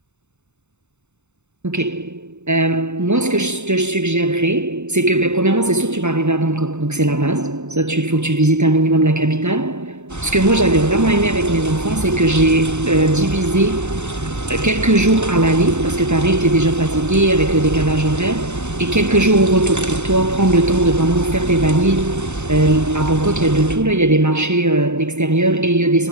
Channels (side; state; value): left; late; 0.83 ms